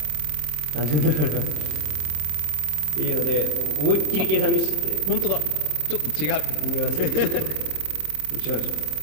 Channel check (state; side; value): late; left; 27 ms